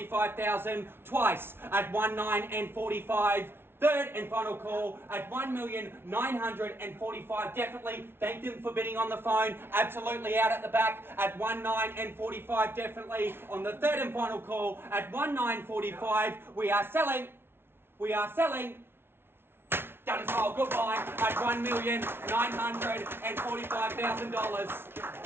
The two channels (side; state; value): left; late; 0.11 ms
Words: Twice at 19 and 45. Third and final call at 1,945,000. Definitely thank them for bidding on the phone. Absolutely out at the back at 19 and 45. Definitely on the third and final call at 1945. We are selling. We are selling. Done and sold. Goodbye at